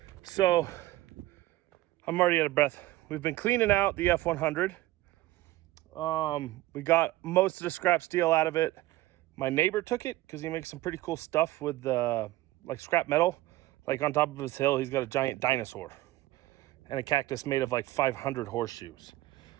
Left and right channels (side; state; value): left; quieter; 17.0 dB